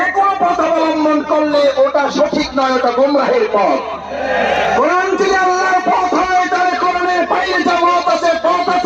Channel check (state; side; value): identical; both; correlation 1.00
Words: কোনো পথ অবলম্বন করলে ওটা সঠিক নয়, ওটা গোমরাহের পথ? কোরআন যদি আল্লাহর পথ হয়, তাহলে কোরআনের বাইরে যা মত আছে, পথ